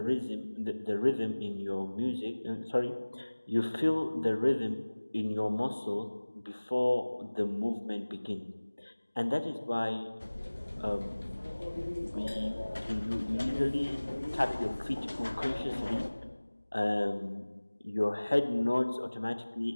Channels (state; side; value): inverted; both; correlation -1.00